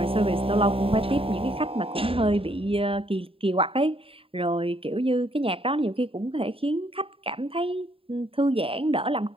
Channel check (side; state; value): left; late; 0.27 ms